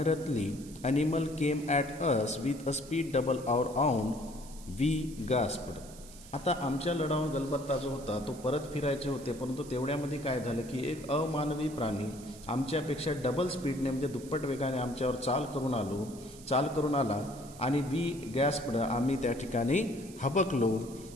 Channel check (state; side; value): noise; right; hiss, 19 dB below the sound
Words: animal came at us with a speed double our own. We gasped. आता आमच्या लढाऊ गलबत्ता जो होता तो परत फिरायचे होते, परंतु तेवढ्यामध्ये काय झालं की एक अमानवी प्राणी आमच्यापेक्षा डबल स्पीडने म्हणजे दुप्पट वेगाने आमच्यावर चाल करून आला आणि वी गॅस्पड, आम्ही त्या ठिकाणी हबकलो.